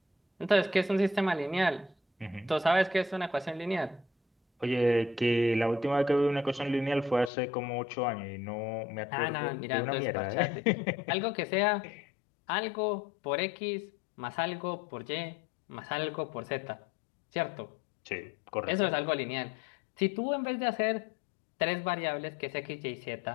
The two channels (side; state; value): right; drops out; at 7.3 s